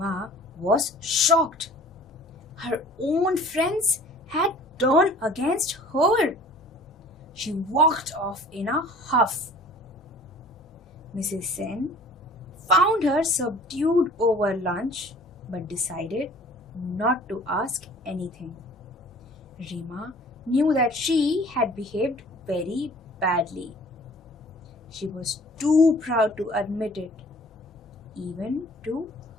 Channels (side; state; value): both; normal; correlation 0.49